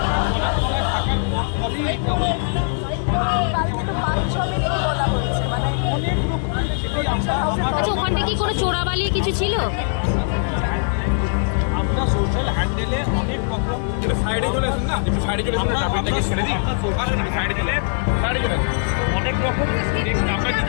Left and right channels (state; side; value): silent; right; digital silence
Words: জলের তলায় থাকার ফলেই এটা হয়েছে। ময়না তদন্ত কালকে তো 5-6 মিনিট বলা হয়েছে, মানে অনেক রকম, সেটাই কিছু ছিল। আমরা সোশ্যাল হ্যান্ডেলে অনেক রকম আমরা সোশ্যাল হ্যান্ডেলে অনেক রকম আমরা